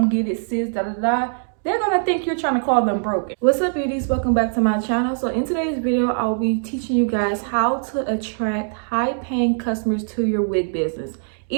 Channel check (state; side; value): silent; left; digital silence